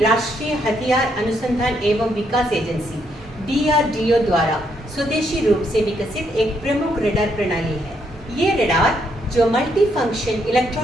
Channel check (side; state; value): both; normal; correlation 0.75